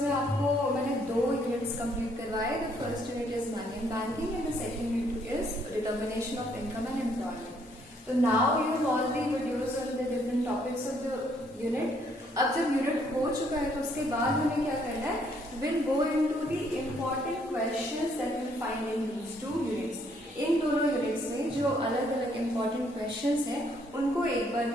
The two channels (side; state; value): both; normal; correlation 0.68